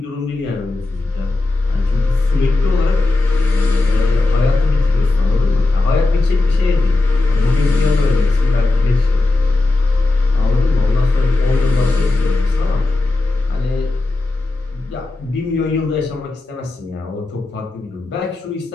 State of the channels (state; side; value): quieter; right; 3.0 dB